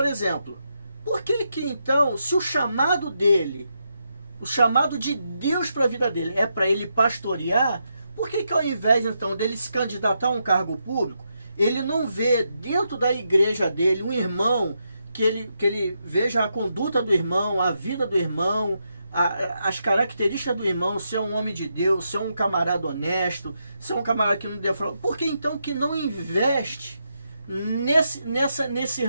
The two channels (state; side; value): inverted; both; correlation -0.83